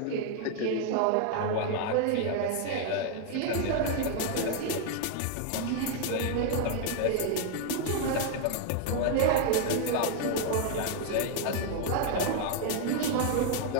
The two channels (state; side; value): different; both; correlation 0.00